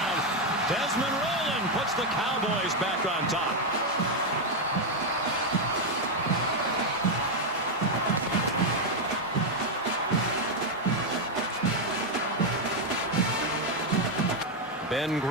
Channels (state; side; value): noise; right; hum, 29 dB below the sound